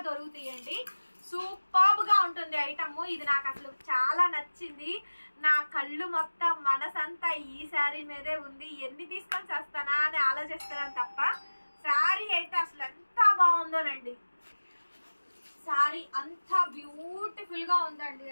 దొరుకుతాయండి. సూపర్బ్ గా ఉంటుంది ఐటమ్. ఇది నాకు అసలు చాలా నచ్చింది. నా కళ్ళు మొత్తం మనసంతా ఈ శారీ మీదే ఉంది. ఎన్ని తీసుకొని వస్తానా అని ఆలోచిస్తున్నాను తప్ప శారీ అయితే అసలు ఎంత బాగుందోనండి. శారీ అంత బ్యూటిఫుల్ గా ఉందండి.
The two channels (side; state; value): both; inverted; correlation -1.00